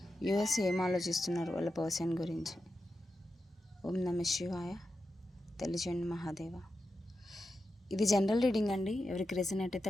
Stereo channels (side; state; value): both; normal; correlation 0.89